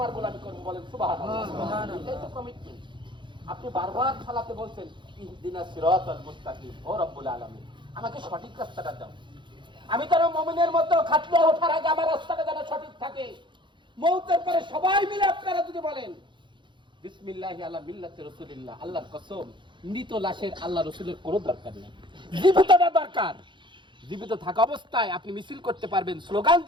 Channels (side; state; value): left; late; 0.23 ms